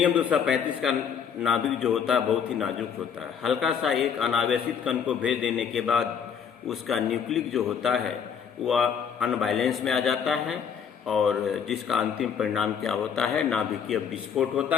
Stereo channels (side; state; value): right; quieter; 7.3 dB